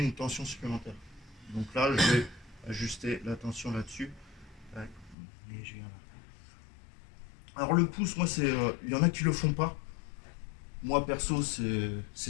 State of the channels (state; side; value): drops out; right; at 5.2 s